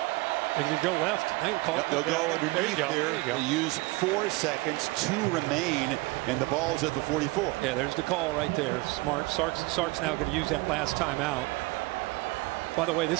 They could go left. They'll go underneath there. You go. They use 4 seconds to remain, and the ball's at the 44. Yeah, there's the call right there. Smart. Sark's now going to use that last timeout. By the way,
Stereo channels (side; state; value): left; quieter; 23.1 dB